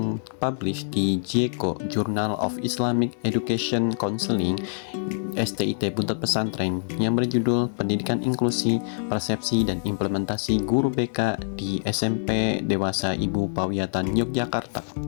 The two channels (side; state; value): right; silent; digital silence